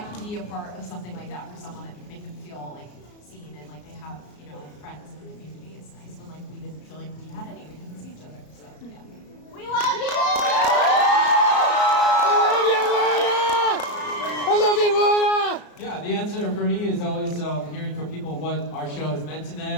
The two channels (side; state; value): right; late; 34 ms